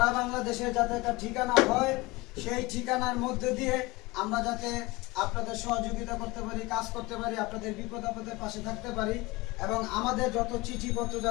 বাংলাদেশে যাতে একটা ঠিকানা হয়, সেই ঠিকানার মধ্যে দিয়ে আমরা যাতে আপনাদের সহযোগিতা করতে পারি, কাজ করতে পারি, আপনাদের বিপদ আপদের পাশে থাকতে পারি এবং আমাদের যত চিঠিপত্র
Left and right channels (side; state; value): right; quieter; 22.4 dB